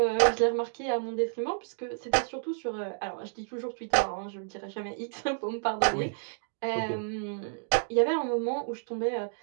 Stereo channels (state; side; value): silent; left; digital silence